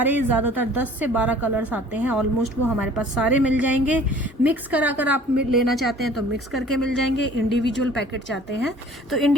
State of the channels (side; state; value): both; normal; correlation 0.50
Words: ज़्यादातर 10 से 12 कलर्स आते हैं ऑलमोस्ट, वो हमारे पास सारे मिल जाएंगे। मिक्स करा कर आप लेना चाहते हैं तो मिक्स करके मिल जाएंगे, इंडिविजुअल पैकेट चाहते हैं तो